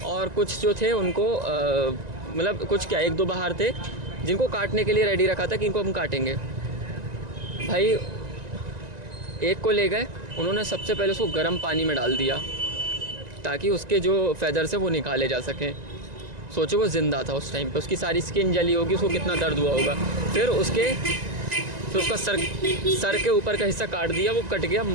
और कुछ जो थे उनको मतलब कुछ क्या 1-2 बाहर थे जिनको काटने के लिए रेडी रखा था कि इनको हम काटेंगे। भाई एक को ले गए, उन्होंने सबसे पहले उसको गर्म पानी में डाल दिया ताकि उसके जो फेदर्स है वो निकाले जा सकें। सोचो वो ज़िंदा था उस टाइम पे, उसकी सारी स्किन जली होगी, उसको कितना दर्द हुआ होगा। फिर उसका सर के ऊपर का हिस्सा काट दिया, वो कट गया,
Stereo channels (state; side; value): late; left; 1.9 ms